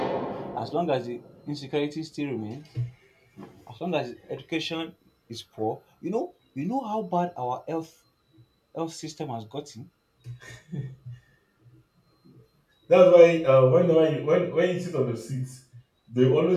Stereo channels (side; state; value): both; identical; correlation 1.00